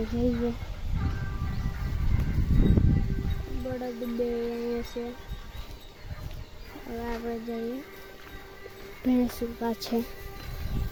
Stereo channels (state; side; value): identical; both; correlation 1.00